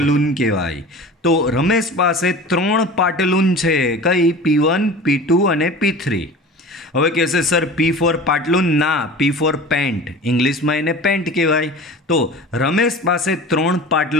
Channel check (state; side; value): normal; both; correlation 0.37